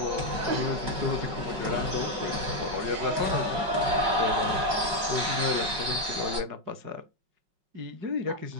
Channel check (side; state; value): left; late; 5.4 ms